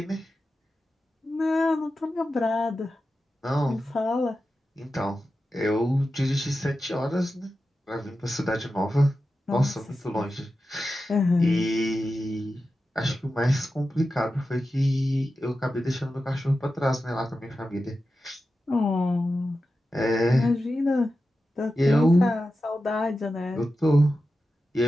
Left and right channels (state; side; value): normal; both; correlation 0.92